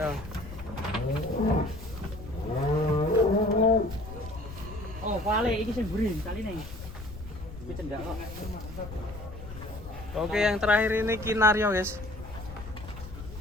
Oh, vale iki sing burin kali nih. Iki cendak kok. Oke, yang terakhir ini Kinario, guys.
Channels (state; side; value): noise; left; rumble, 12 dB below the sound